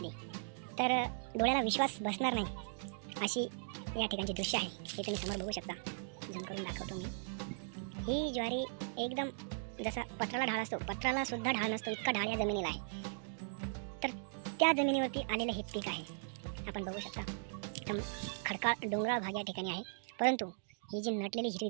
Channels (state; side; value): silent; left; digital silence